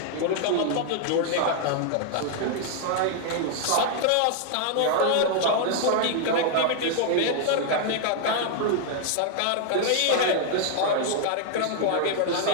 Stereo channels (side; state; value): both; different; correlation 0.00